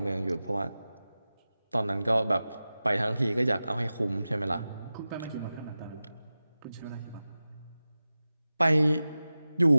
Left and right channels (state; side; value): inverted; both; correlation -0.95